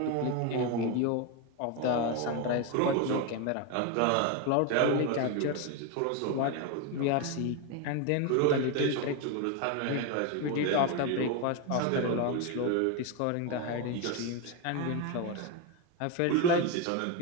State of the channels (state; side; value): different; both; correlation 0.02